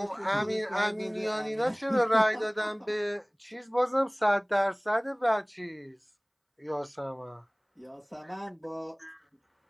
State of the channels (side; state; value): both; identical; correlation 1.00